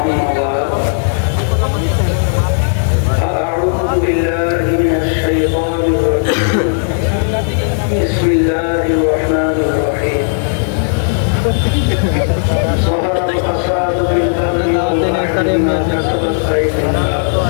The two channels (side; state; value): right; silent; digital silence